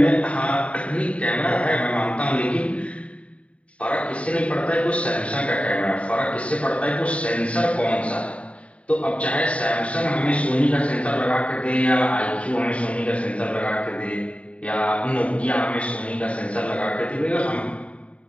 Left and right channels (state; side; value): late; right; 0.064 ms